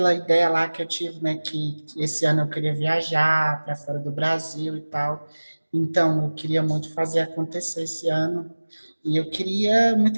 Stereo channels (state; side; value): inverted; both; correlation -1.00